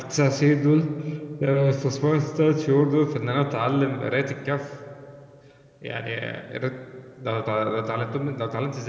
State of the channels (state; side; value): identical; both; correlation 1.00